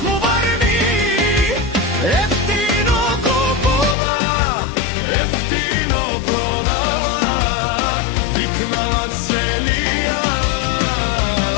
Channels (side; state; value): right; drops out; at 4.0 s